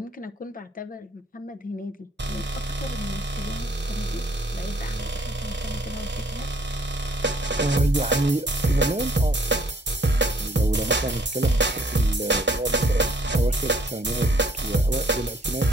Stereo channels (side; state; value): both; normal; correlation 0.62